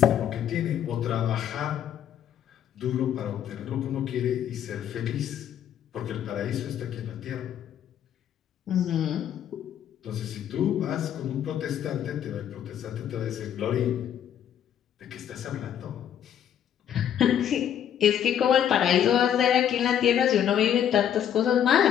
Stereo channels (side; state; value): right; quieter; 9.8 dB